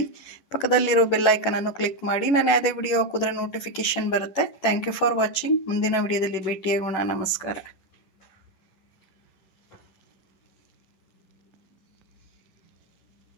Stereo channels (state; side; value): late; right; 11 ms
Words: ಪಕ್ಕದಲ್ಲಿರೋ ಬೆಲ್ ಐಕನನ್ನು ಕ್ಲಿಕ್ ಮಾಡಿ. ನಾನು ಯಾವುದೇ ವಿಡಿಯೋ ಹಾಕಿದ್ರೆ ನೋಟಿಫಿಕೇಷನ್ ಬರುತ್ತೆ. Thank you for watching. ಮುಂದಿನ ವಿಡಿಯೋದಲ್ಲಿ ಭೇಟಿಯಾಗೋಣ. ನಮಸ್ಕಾರ.